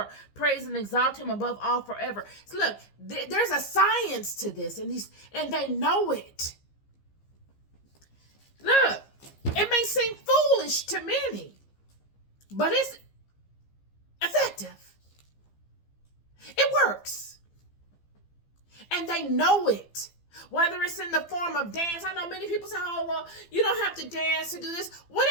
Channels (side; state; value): right; late; 15 ms